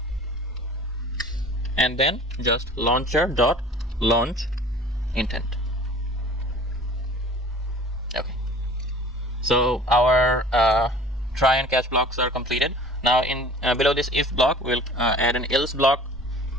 and then just launcher dot launch intent. Okay, so our try and catch blocks are completed. Now in below this if block we'll add an else block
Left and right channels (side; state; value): both; normal; correlation 0.45